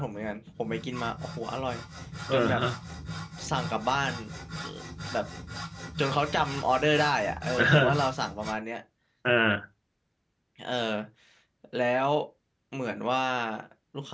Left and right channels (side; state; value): both; identical; correlation 1.00